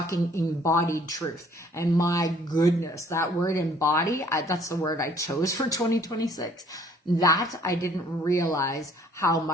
embodied truth. And my goodness, that word embody, that's the word I chose for 2026. That I didn't realize how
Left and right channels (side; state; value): both; normal; correlation 0.59